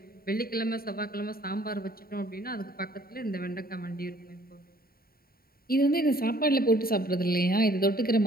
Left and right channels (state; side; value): late; right; 0.43 ms